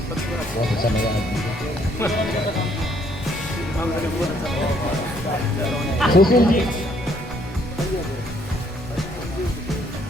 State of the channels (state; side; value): normal; both; correlation 0.67